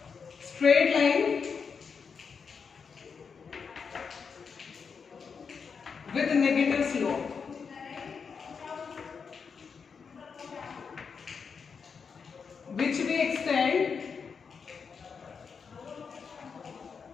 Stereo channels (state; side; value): quieter; right; 5.9 dB